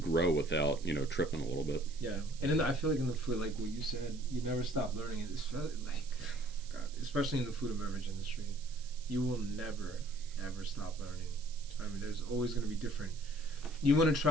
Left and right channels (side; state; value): right; noise; hiss, 19 dB below the sound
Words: without tripping a little bit. Yeah, and I feel like in the food, like what you said, you never stop learning. It's like, God, especially in the food and beverage industry, you will never ever stop learning. I mean, there's always going to be different. You want to